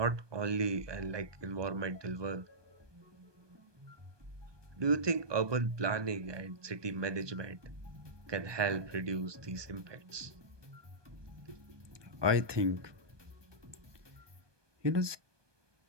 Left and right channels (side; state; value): left; late; 1.2 ms